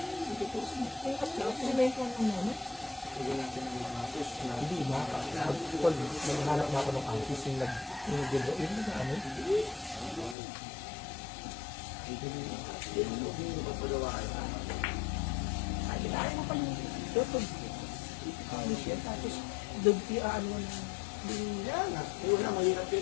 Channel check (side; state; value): right; drops out; at 10.4 s